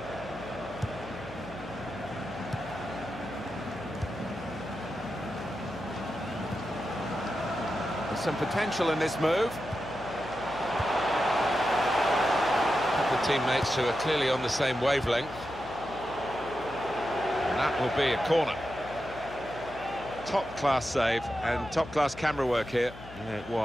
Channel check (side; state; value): left; noise; hum, 16 dB below the sound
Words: There's some potential in this move. The teammates who are clearly on the same wavelength. And that will be a corner. Top-class save and top-class camera work here. Yeah, it